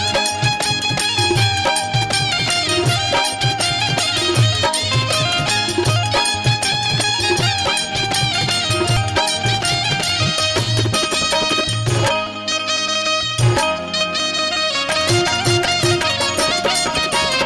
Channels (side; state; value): both; identical; correlation 1.00